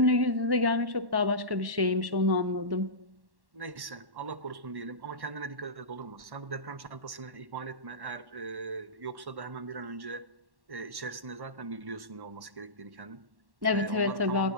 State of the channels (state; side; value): late; left; 1.1 ms